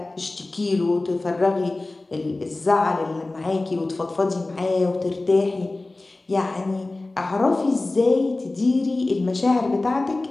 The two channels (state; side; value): quieter; right; 3.0 dB